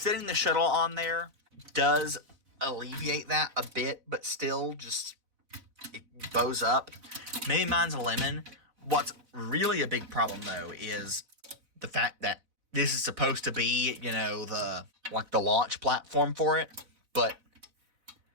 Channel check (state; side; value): late; left; 4.0 ms